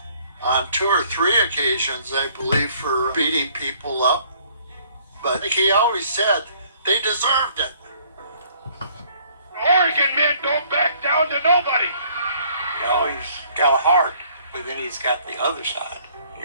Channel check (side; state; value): both; inverted; correlation -0.60